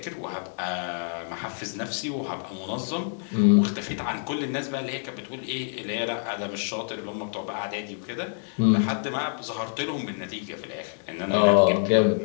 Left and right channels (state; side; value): silent; right; 60 dB below the other